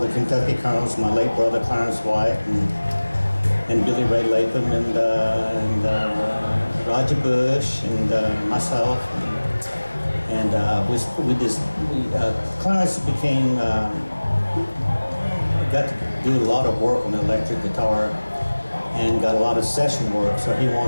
the Kentucky Colonels. My late brother Clarence White and Billy Ray Latham and Roger Bush and myself and Clarence became got to do a lot of work on the electric guitar and got a lot of session work, so he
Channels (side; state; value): both; inverted; correlation -1.00